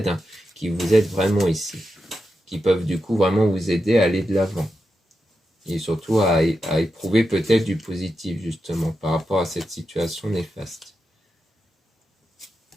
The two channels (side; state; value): both; normal; correlation 0.88